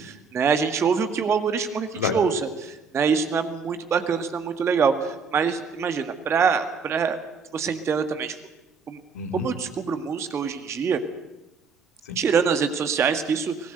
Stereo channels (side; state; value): left; quieter; 5.2 dB